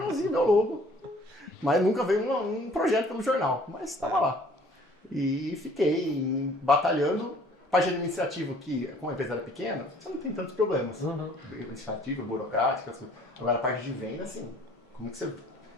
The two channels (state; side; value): normal; both; correlation 0.55